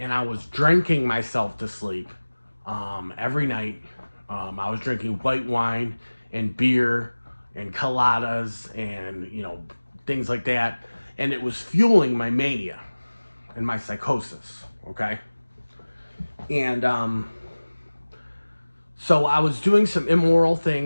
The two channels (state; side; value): inverted; both; correlation -1.00